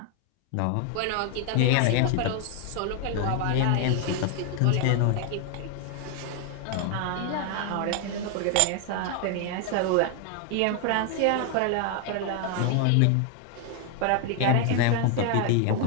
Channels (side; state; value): both; different; correlation 0.00